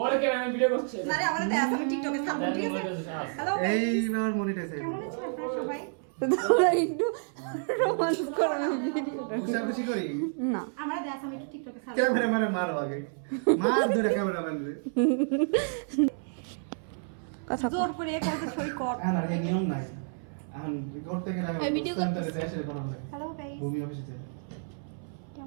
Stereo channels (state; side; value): silent; left; 58 dB below the other